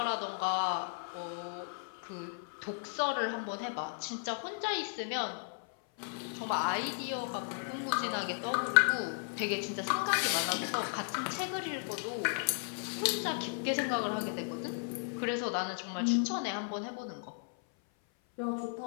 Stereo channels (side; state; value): right; silent; 54 dB below the other